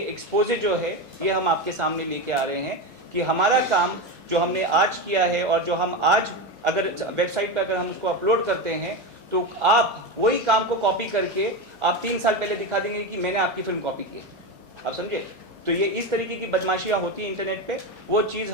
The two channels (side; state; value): both; normal; correlation 0.17